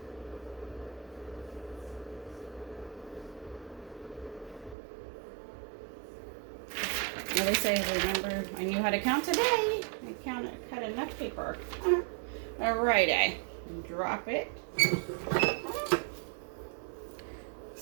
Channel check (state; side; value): drops out; left; at 4.8 s